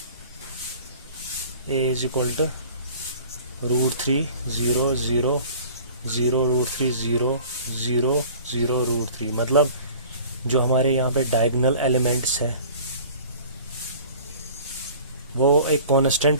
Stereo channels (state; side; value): inverted; both; correlation -0.45